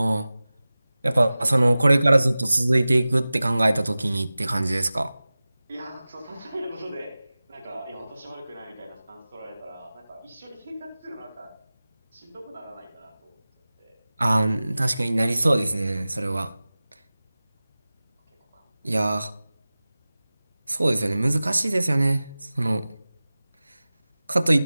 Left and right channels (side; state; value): both; inverted; correlation -0.97